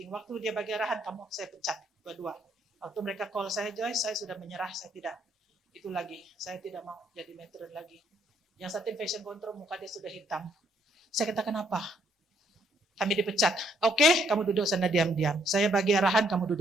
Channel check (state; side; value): normal; both; correlation 0.69